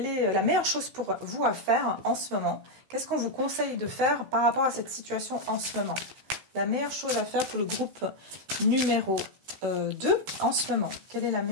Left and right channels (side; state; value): left; late; 16 ms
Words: est la meilleure chose pour vous à faire en ce moment. Qu'est-ce qu'on vous conseille de faire par rapport à cette situation en ce moment? La meilleure chose à faire pour le groupe numéro 2 en ce moment. Quelle est la